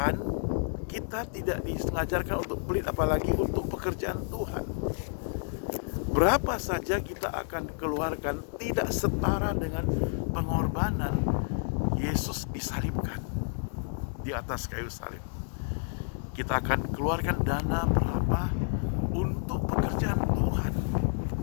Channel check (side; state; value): right; silent; digital silence